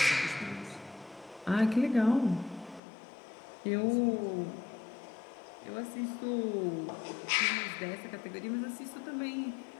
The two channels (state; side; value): drops out; right; at 2.8 s